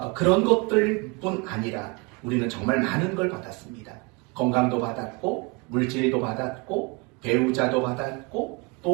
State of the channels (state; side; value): quieter; left; 29.6 dB